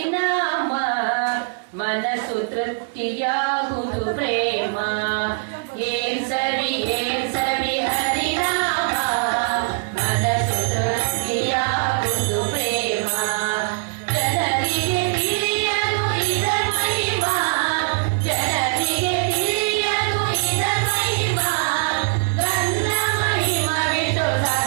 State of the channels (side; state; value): left; silent; 64 dB below the other